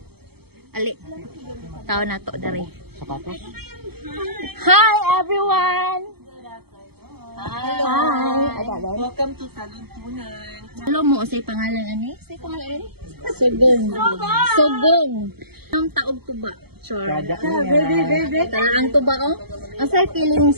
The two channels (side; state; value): left; late; 0.96 ms